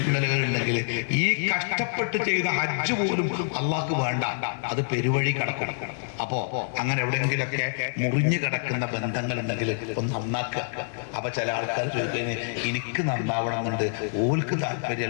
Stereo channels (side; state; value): right; silent; 60 dB below the other